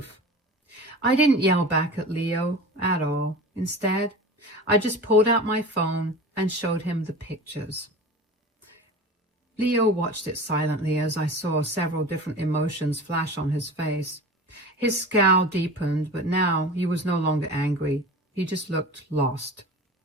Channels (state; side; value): normal; both; correlation 0.35